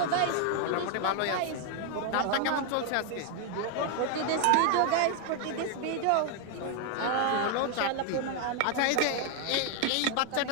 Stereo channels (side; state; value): both; different; correlation 0.00